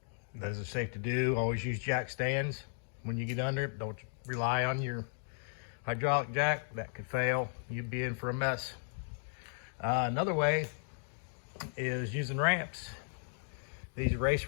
Those are safe to do. Always use jack stands when you get under it. Don't rely on your hydraulic jack. That could fail. You'd be in for a mess. Another way is using ramps. These race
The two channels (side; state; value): right; silent; digital silence